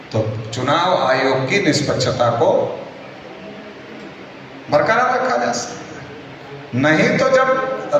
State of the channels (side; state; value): both; identical; correlation 1.00